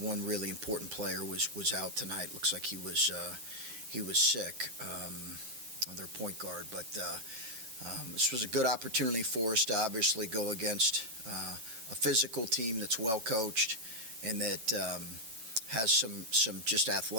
One really important player was out tonight. Looks like he was sick. Their point guard, but this was a good opportunity for us to obviously go against a physical team that's well coached and that has some just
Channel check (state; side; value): late; left; 8.9 ms